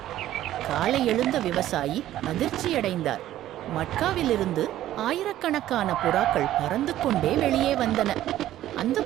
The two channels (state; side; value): quieter; left; 13.4 dB